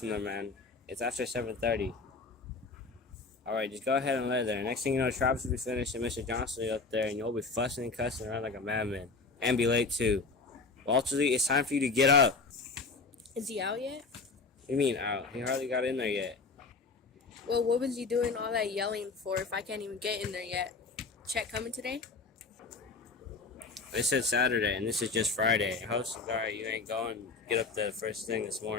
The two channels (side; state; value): right; quieter; 4.2 dB